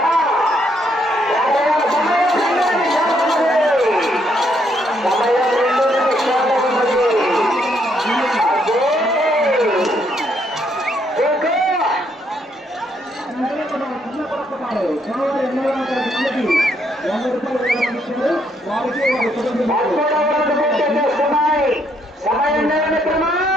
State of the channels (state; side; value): normal; both; correlation 0.73